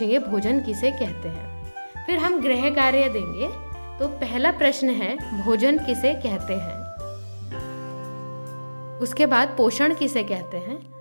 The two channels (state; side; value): inverted; both; correlation -1.00